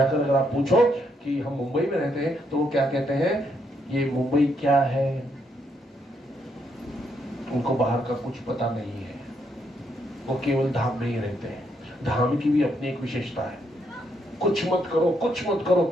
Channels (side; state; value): both; normal; correlation 0.76